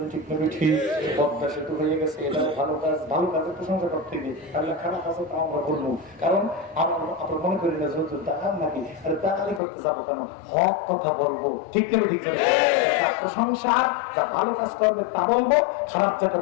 ঠিক নেই? ঠিক। পদ্মা সেতু হয়ে গেছে, এটা ভালো কাজ, ভালো কাজের প্রশংসা করতে গিয়ে তাহলে খারাপ আছে তা আমরা বলবো, কারণ আমরা মনে করি না যেহেতু দাঁড়ান নাকি, আরে দাঁড়ালি করতে যাবো কেন, হক কথা বলবো, ঠিক নেই? ঠিক নেই? প্রশংসা, যা ভালো কাজ করবে তা বলবো, খারাপ যা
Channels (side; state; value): right; drops out; at 9.6 s